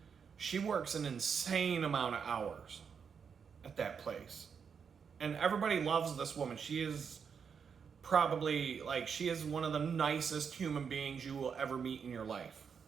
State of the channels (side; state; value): left; quieter; 6.6 dB